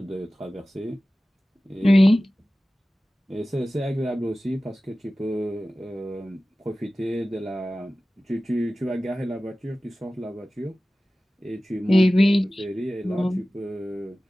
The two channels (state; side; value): normal; both; correlation 0.96